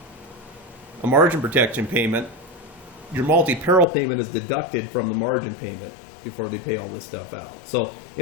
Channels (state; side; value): drops out; right; at 3.9 s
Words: a margin protection payment, your multi-peril payment is deducted from the margin payment before they pay all this stuff out. So